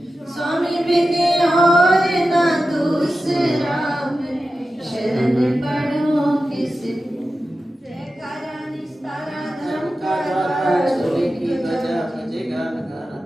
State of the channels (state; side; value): normal; both; correlation 0.93